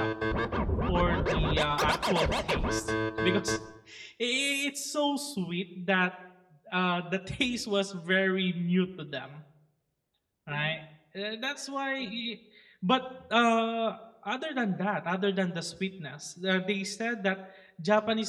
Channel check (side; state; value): both; identical; correlation 1.00